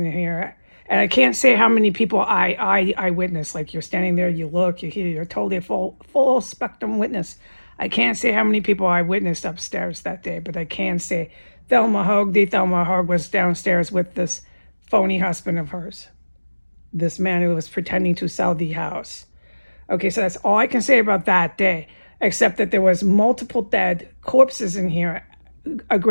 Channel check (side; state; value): both; inverted; correlation -1.00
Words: here. And I can't say how many people I witnessed. Like you're standing there, you look, you hear, you're totally a full spectrum witness. I can't say how many people I witnessed upstairs that day, but I can say Thelma Houge was downstairs with this phony husband of hers. This man who was pretending to sell the house. Okay, so that's all I can say about that day, except that there was multiple dead corpses in here. A